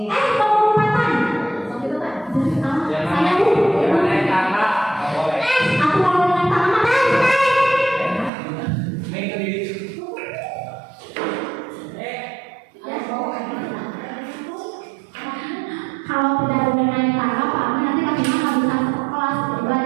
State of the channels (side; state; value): left; drops out; at 8.3 s